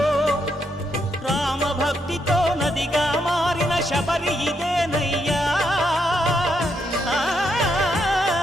రామభక్తితో నదిగా మారిన శబరి ఇదేనయ్యా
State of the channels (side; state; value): both; normal; correlation 0.78